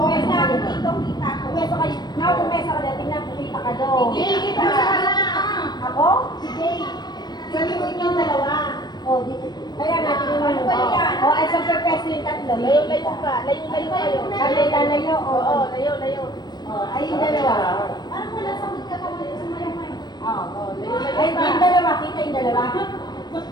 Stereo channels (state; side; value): late; right; 0.20 ms